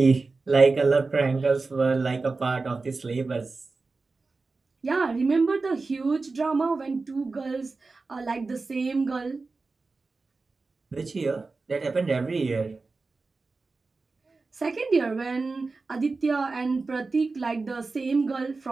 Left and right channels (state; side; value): quieter; left; 3.9 dB